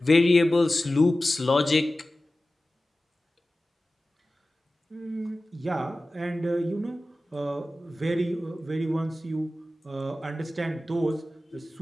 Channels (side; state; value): both; normal; correlation 0.96